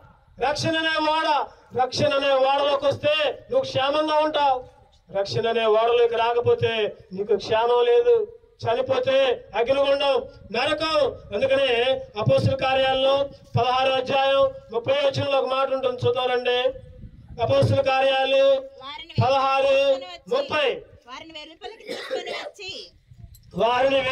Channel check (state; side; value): identical; both; correlation 1.00